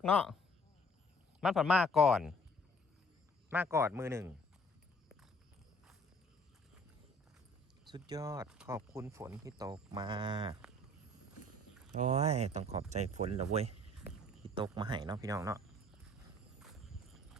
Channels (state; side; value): normal; both; correlation 0.56